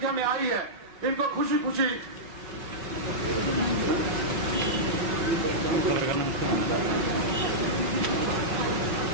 में आई है, इनको खुशी खुशी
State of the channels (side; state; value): left; late; 5.3 ms